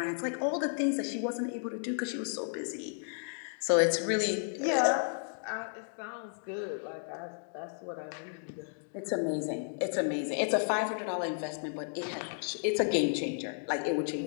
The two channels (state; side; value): silent; right; digital silence